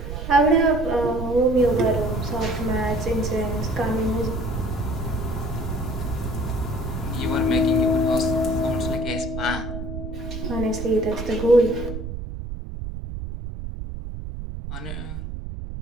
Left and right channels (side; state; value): right; noise; rumble, 7 dB below the sound